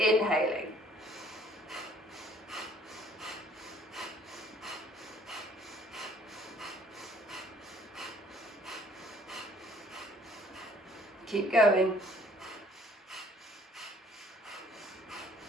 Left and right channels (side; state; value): both; normal; correlation 0.58